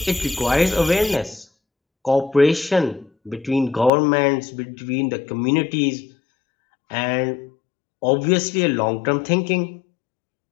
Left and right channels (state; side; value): drops out; right; at 3.9 s